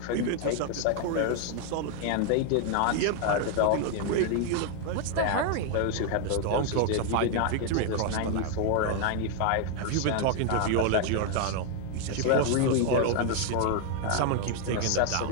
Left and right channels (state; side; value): different; both; correlation 0.00